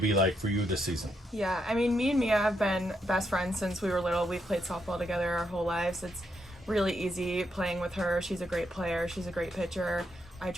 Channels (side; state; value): both; normal; correlation 0.79